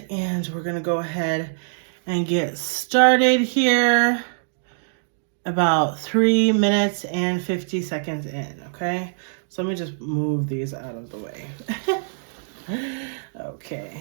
and we're gonna go ahead and get started here. About 3 minutes and 50 seconds in, okay? So let me just move these out of the way. Okay.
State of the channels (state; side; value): silent; left; digital silence